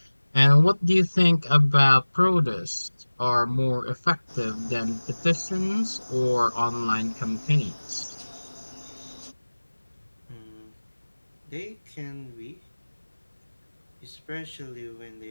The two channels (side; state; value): both; inverted; correlation -1.00